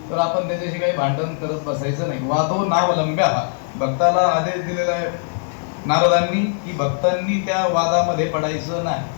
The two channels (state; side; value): silent; right; 65 dB below the other